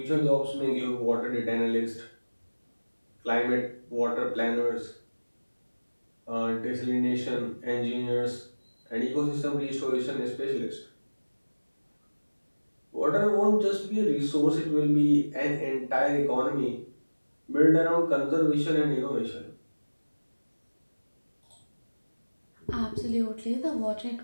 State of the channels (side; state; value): both; inverted; correlation -1.00